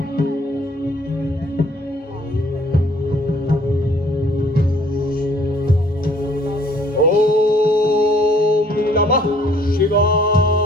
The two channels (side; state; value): both; normal; correlation 0.59